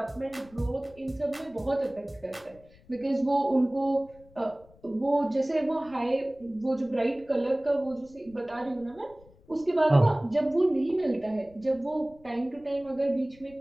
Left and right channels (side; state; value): left; noise; rumble, 26 dB below the sound